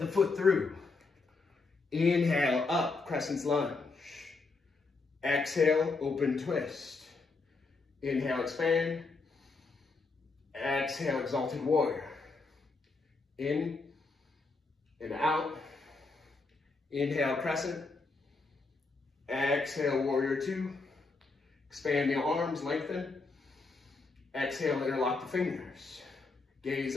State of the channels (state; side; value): quieter; right; 3.9 dB